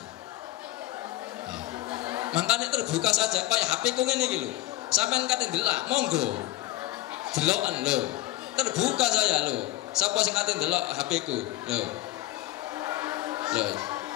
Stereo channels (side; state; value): right; quieter; 16.7 dB